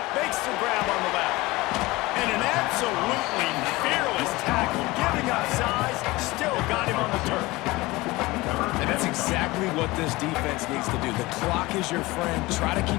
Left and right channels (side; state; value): right; quieter; 21.0 dB